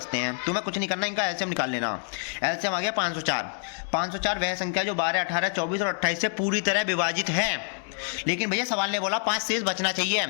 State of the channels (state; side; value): silent; right; 60 dB below the other